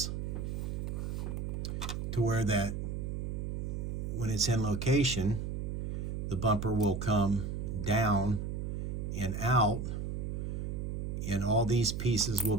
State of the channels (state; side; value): noise; right; hum, 3 dB below the sound